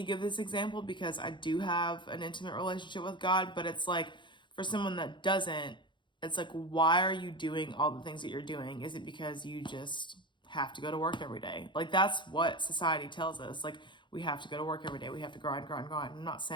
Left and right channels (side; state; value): right; late; 0.23 ms